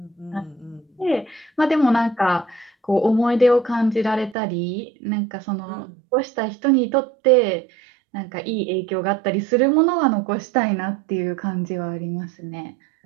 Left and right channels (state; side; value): drops out; left; at 4.4 s